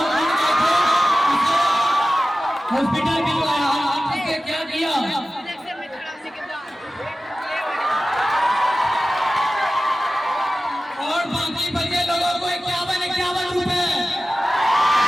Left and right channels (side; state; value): both; normal; correlation 0.95